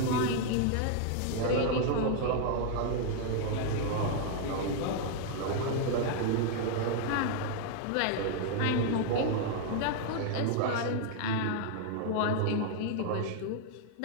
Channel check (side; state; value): both; different; correlation 0.00